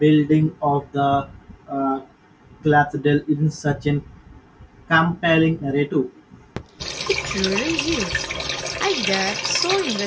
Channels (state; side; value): identical; both; correlation 1.00